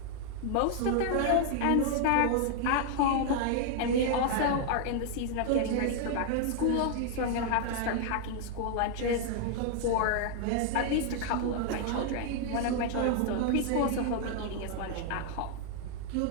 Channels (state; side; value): different; both; correlation 0.00